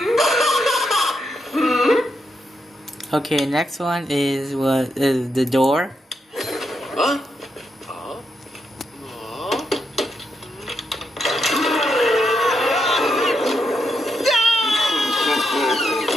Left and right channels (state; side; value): normal; both; correlation 0.81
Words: Okay, next one is what is the door.